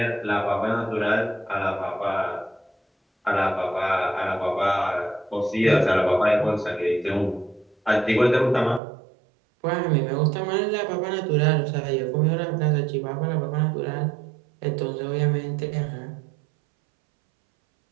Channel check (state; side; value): drops out; left; at 8.8 s